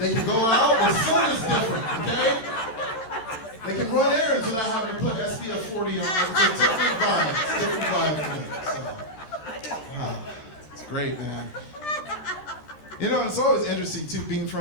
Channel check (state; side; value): late; right; 13 ms